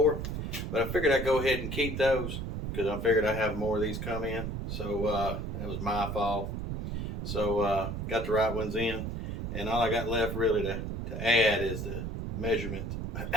but I figured I'd go ahead and keep those because I figured I'd have more of these come in. So that was my fault. So got the right ones in, and all I got left really to add is the measurement,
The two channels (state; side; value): noise; right; rumble, 4 dB below the sound